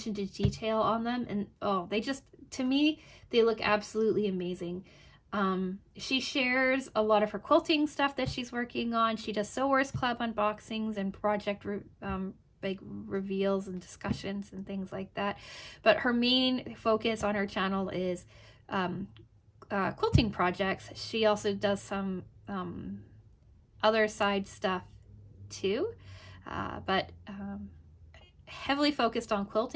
to detail on them, and oh, they just, to me, they look absolutely amazing. She shares a lot of her quilting stuff that she's working on. She does Sewers Club unboxings and project like reveals and discussions and things like that, but her main focus on her channel is quilting projects. She also does some other side stuff too, but heavily focused on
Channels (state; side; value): identical; both; correlation 1.00